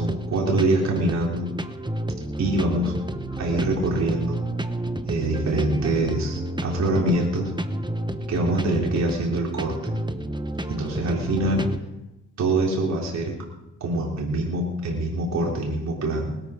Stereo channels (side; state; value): both; normal; correlation 0.49